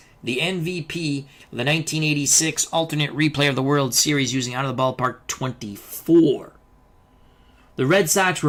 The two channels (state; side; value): identical; both; correlation 1.00